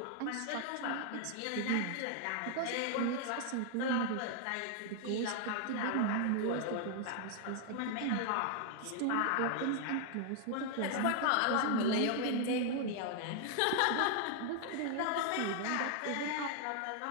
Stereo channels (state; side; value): different; both; correlation 0.00